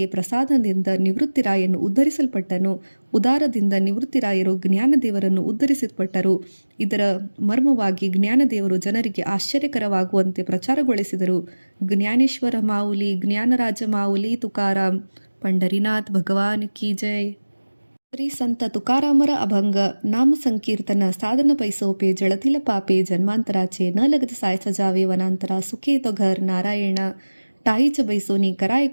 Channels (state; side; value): inverted; both; correlation -1.00